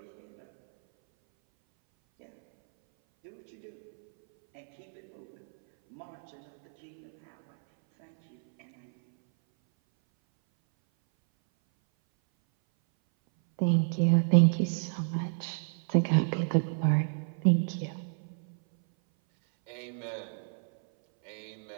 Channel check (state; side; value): silent; left; 58 dB below the other